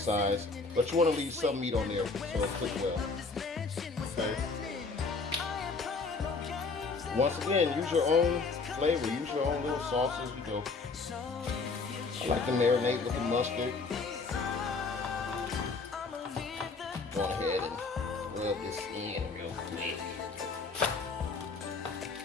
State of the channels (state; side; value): quieter; right; 4.2 dB